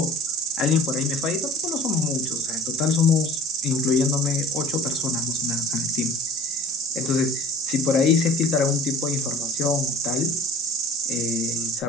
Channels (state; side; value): normal; both; correlation 0.44